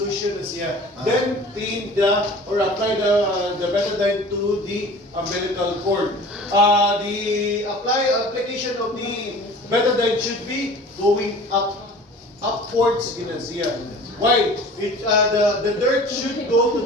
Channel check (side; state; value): both; normal; correlation 0.43